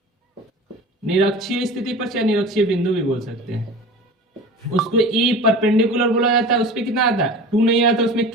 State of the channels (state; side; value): normal; both; correlation 0.36